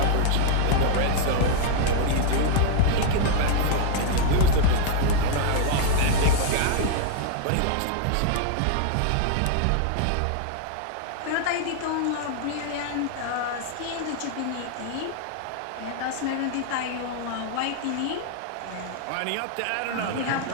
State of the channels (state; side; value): different; both; correlation 0.00